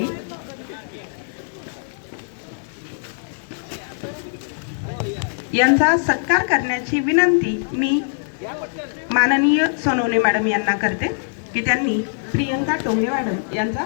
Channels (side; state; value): right; silent; digital silence